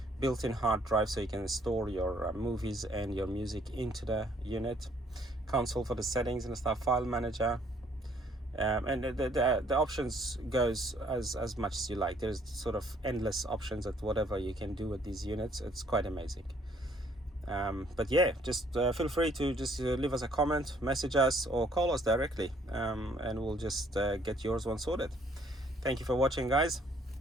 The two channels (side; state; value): both; normal; correlation 0.63